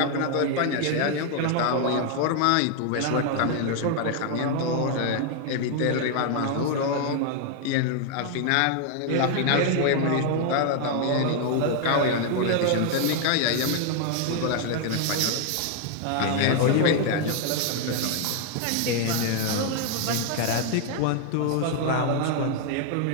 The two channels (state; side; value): different; both; correlation 0.00